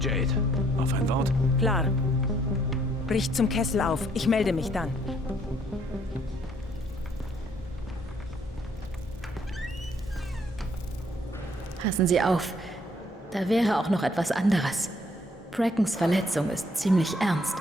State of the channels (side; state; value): both; normal; correlation 0.66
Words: auf ein Wort? Klar. Brich zum Kessel auf. Ich melde mich dann. Passen Sie auf. Da wäre auch noch etwas anderes. Brackens Verletzung ist ziemlich ernst.